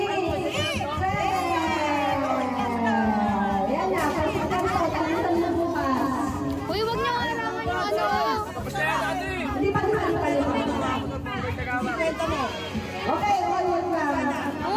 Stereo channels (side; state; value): both; identical; correlation 1.00